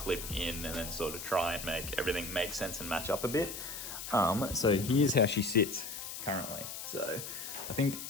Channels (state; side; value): noise; left; hiss, 8 dB below the sound